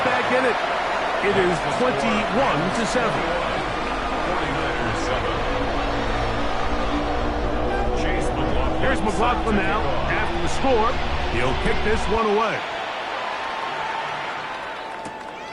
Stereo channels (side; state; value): both; identical; correlation 1.00